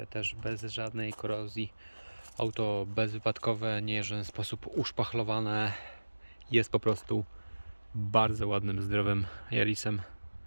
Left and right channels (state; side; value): inverted; both; correlation -1.00